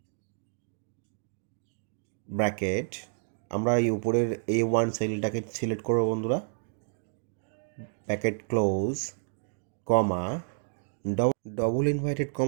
ব্র্যাকেট। আমরা এই উপরের A1 সেলটাকে সিলেক্ট করবো বন্ধুরা, bracket close comma double invited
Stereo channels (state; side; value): silent; left; digital silence